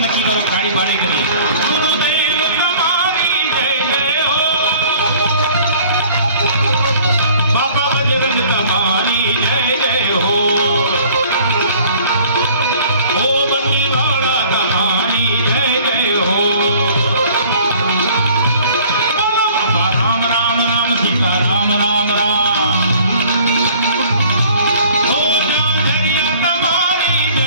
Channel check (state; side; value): inverted; both; correlation -0.52